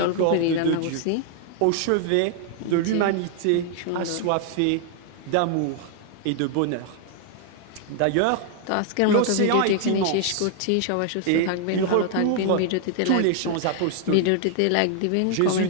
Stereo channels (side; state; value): both; different; correlation 0.00